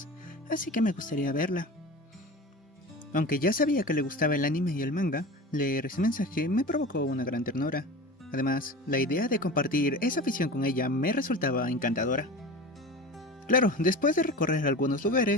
así que me gustaría verla. Aunque ya sabía que le gustaba el anime y el manga, leer ese mensaje me provocó una gran ternura. Además, la idea de compartir esa afición con ella me resultaba encantadora. Claro, después de recorrer algunos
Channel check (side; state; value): both; normal; correlation 0.32